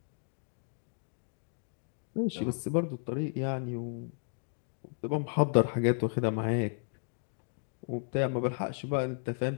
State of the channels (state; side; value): silent; right; digital silence